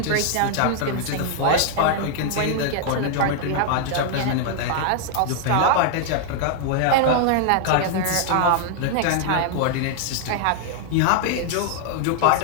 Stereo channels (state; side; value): different; both; correlation 0.00